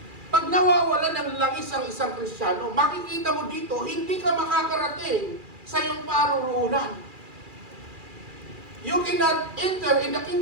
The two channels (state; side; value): late; left; 2.4 ms